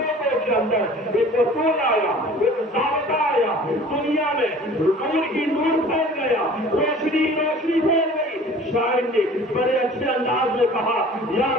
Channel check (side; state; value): both; normal; correlation 0.46